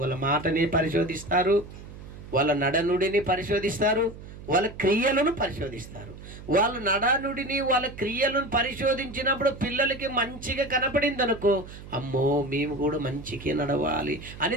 మాటని పరిశోధిస్తారు, వాళ్ళ నడనుడిని పరిశోధిస్తారు, వాళ్ళ క్రియలను పరిశోధిస్తారు. వాళ్ళ నడనుడిని వాళ్ళ క్రియలను పరిశోధించినప్పుడు పిల్లలకి మంచిగా కనపడింది అనుకో, అమ్మో మేము కూడా మంచిగా నడవాలి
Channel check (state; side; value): noise; right; hum, 15 dB below the sound